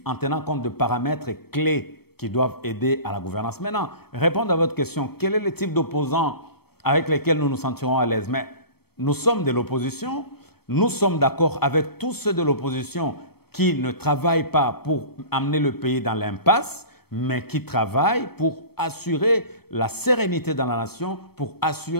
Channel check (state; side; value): late; right; 0.96 ms